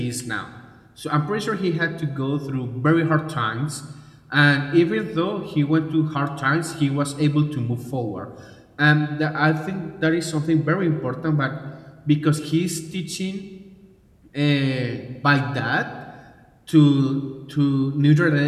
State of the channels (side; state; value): both; identical; correlation 1.00